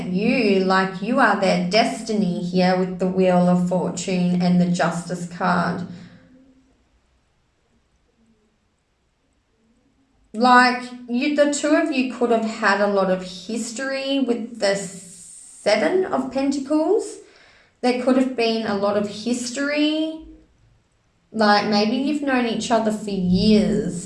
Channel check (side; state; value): both; identical; correlation 1.00